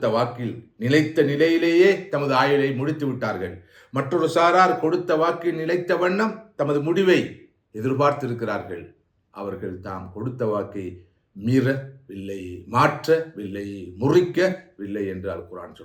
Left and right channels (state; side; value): identical; both; correlation 1.00